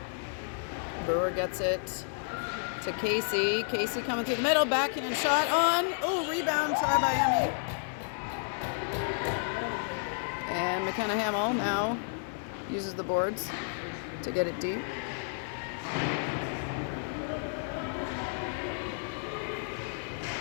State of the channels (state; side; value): silent; right; 57 dB below the other